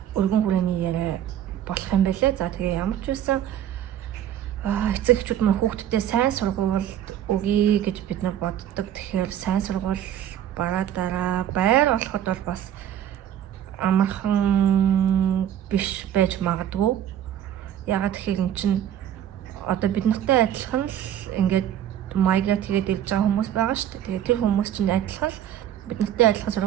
өргөн хүрээний яриа болох юм байлээ. За тэгээ ямар ч үсэн эцэг эхчүүд маань хүүхдүүдээ сайн сургуульд өгье гэж бид нар боддог. Тэгэхээр сайн сургууль бараа байр олоход бол бас амархан биш байж магадгүй. Ягаад гэхээр эн чинь одоо бид нартай адилхан л ингээд майгрейт хийгээд ирж байгаа хүмүүс байгаа шүү дээ. Тэгээд тэр хүмүүс чинь адилхан л бид нартай адилхан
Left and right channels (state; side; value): quieter; left; 10.7 dB